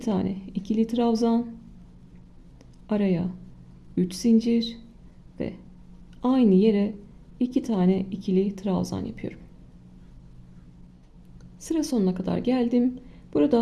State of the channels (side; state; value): both; identical; correlation 1.00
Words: ikili trabzan, araya 3 zincir ve aynı yere 2 tane ikili trabzan yapıyorum. Sıra sonuna kadar geldim.